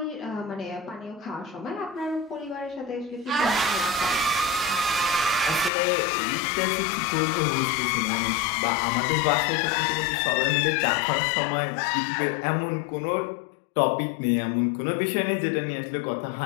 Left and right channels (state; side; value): drops out; right; at 5.7 s